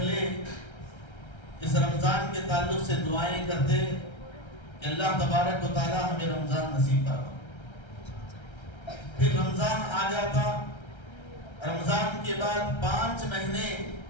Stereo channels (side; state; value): right; late; 1.3 ms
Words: اس رمضان کے تعلق سے دعائیں کرتے کہ اللہ تبارک و تعالی ہمیں رمضان نصیب فرما۔ پھر رمضان آ جاتا، رمضان کے بعد 5 مہینے